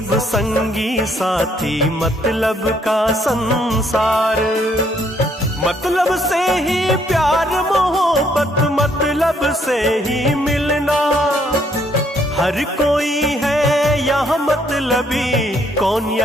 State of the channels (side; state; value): both; normal; correlation 0.69